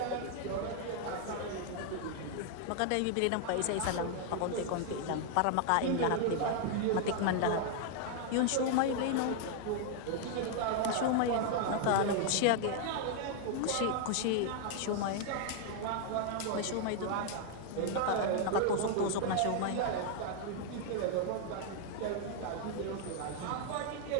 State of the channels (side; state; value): both; different; correlation 0.00